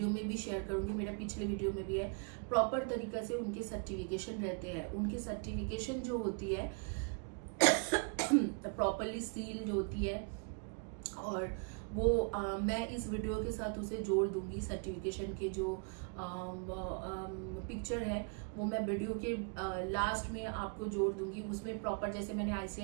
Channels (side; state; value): left; quieter; 37.2 dB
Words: में भी शेयर करूंगी, मेरा पिछले वीडियो में भी है। प्रॉपर तरीके से उनके सर्टिफिकेशन रहते हैं, उनके सर्टिफिकेशन जो होती है प्रॉपरली सील जो होती है, और वो मैं इस वीडियो के साथ उसे जोड़ दूंगी। सर्टिफिकेशन के जो पिक्चर है वो मैं वीडियो के लास्ट में आपको जोड़ दूंगी। उसमें प्रॉपर, जैसे मैंने